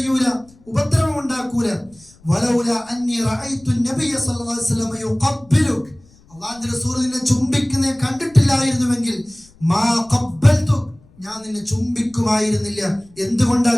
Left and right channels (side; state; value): left; noise; rumble, 28 dB below the sound